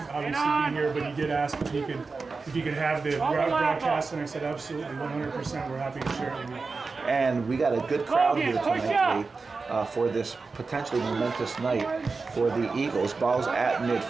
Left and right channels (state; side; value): quieter; left; 4.3 dB